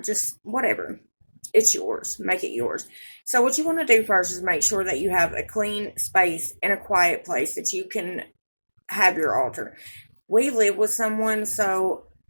just whatever? It's yours. Make it yours. So, what you want to do first is make sure that you have a clean space and a quiet place that you can have your altar. We live with someone, so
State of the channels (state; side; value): inverted; both; correlation -1.00